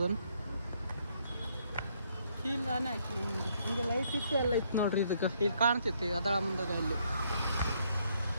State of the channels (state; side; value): inverted; both; correlation -0.71